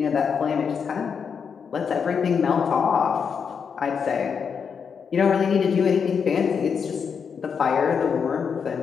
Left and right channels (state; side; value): quieter; right; 6.5 dB